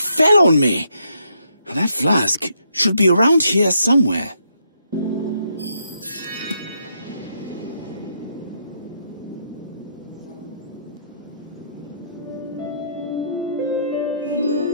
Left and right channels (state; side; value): inverted; both; correlation -0.75